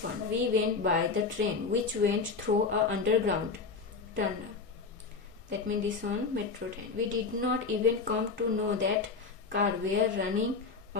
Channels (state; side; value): quieter; right; 4.6 dB